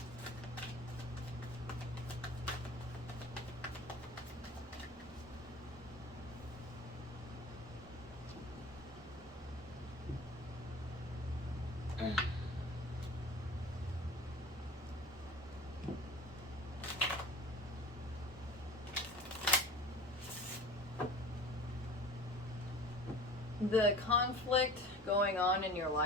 The conflict going on in your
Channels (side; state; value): both; normal; correlation 0.39